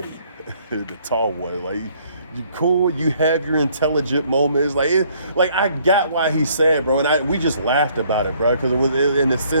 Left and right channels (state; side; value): inverted; both; correlation -0.63